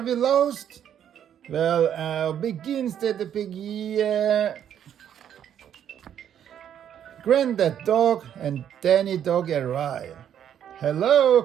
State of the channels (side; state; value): left; quieter; 9.6 dB